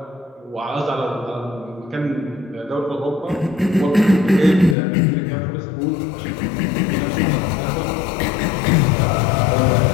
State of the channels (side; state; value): right; drops out; at 4.8 s